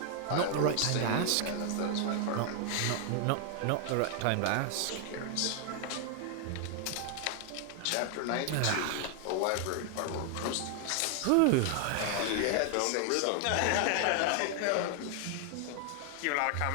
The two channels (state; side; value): different; both; correlation 0.00